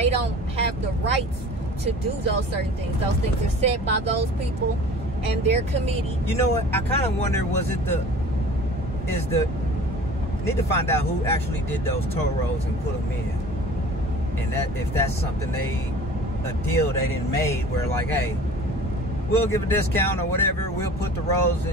don't have the rights to do those certain things. Those things are set by those people and their committee. You know what? I kind of wonder, need to find out who actually did those toll roads and put them in, and that if that's something a deal they didn't made where like, hey, we'll give a discount or whatever, we'll put the roads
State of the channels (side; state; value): both; normal; correlation 0.43